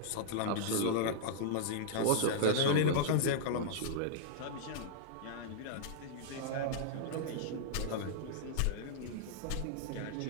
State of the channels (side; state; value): both; different; correlation -0.02